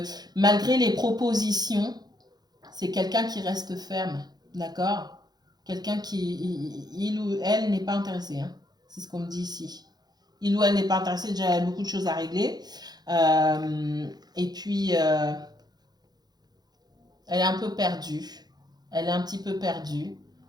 malgré les propositions, c'est quelqu'un qui reste ferme, d'accord? Quelqu'un qui, il ou elle n'est pas intéressé, hein. C'est ce qu'on me dit ici. Il ou elle n'est pas intéressé, déjà, il y a beaucoup de choses à régler. Et puis, elle est un peu perdue. Elle est un petit peu perdue.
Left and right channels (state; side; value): late; left; 0.19 ms